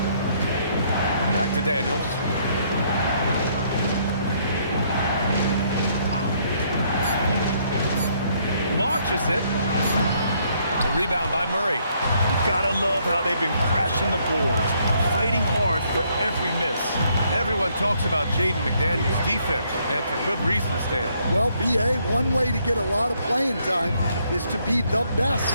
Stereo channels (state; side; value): inverted; both; correlation -0.69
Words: Back to Daniels. Launches it. The rebound by Murray. Gotta love how they've been crashing the boards, fighting hard for every miss. Everyone talks about Jaden McDaniels' defense, and for good reason, Stan. Well, B.A., one way to get a lot of playing time is to be the